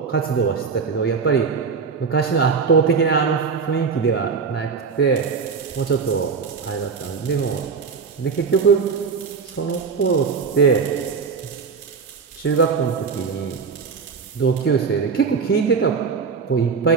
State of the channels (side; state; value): left; quieter; 5.5 dB